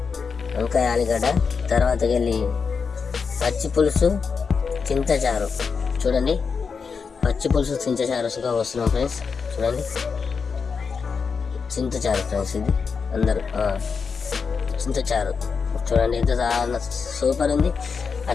ఆలుగడ్డ తర్వాతకి వెళ్ళి పచ్చి పులుసు చింతచారు. చూడండి పచ్చి పులుసు చింతచారుగా వస్తున్నాం ఫ్రెండ్స్. చూడండి చింతచారు ఫ్రెండ్స్. ఇది అందరూ చింతచారు చూడండి ఎంత సూపర్ ఉంది.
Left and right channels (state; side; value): quieter; right; 5.5 dB